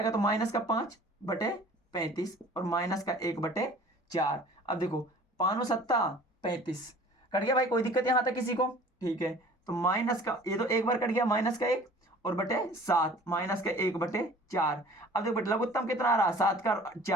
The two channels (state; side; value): normal; both; correlation 0.47